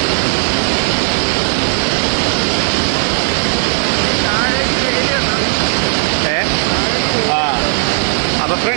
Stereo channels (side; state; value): left; silent; digital silence